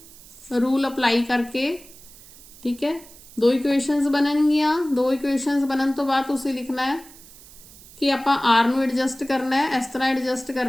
रूल अप्लाई करके, ठीक है, 2 इक्वेशनस बननगियां। 2 इक्वेशनस बनन तो बाद तुसी लिखना है कि आपां R नूं एडजस्ट करना है, इस तरह एडजस्ट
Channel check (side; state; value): right; noise; hiss, 21 dB below the sound